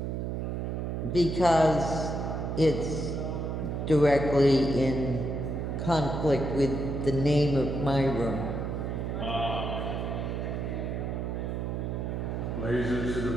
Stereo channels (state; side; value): noise; right; hum, 2 dB below the sound